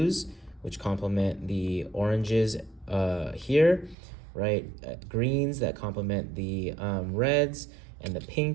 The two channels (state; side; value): drops out; left; at 4.0 s